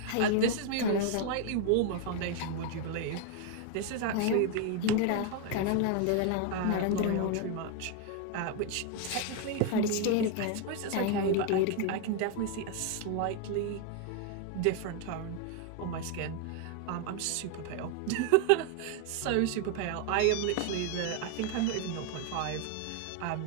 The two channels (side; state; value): both; different; correlation 0.01